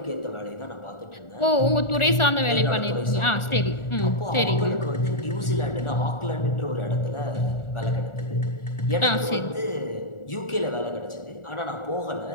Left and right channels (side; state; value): right; late; 1.4 ms